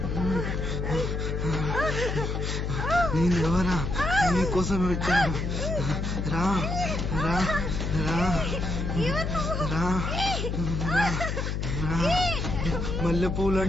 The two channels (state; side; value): noise; left; hum, 1 dB below the sound